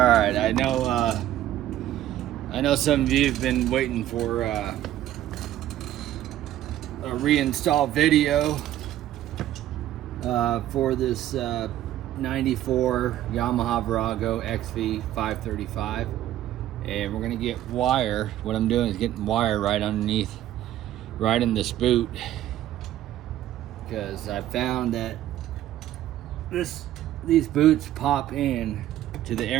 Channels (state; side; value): quieter; left; 13.0 dB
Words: I know some of you have been waiting for a reinstall video for this 94 Yamaha Virago xv535, and we're gonna get wire. What I'm doing is getting wire right underneath, right in this boot, because I found that these boots pop in to the